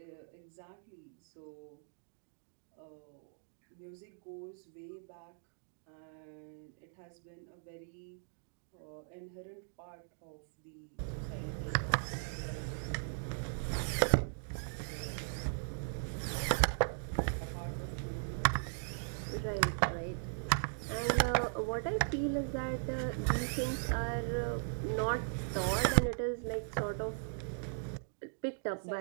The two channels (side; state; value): left; silent; digital silence